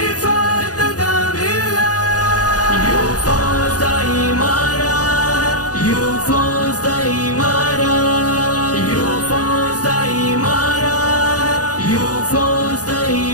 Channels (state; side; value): late; right; 0.68 ms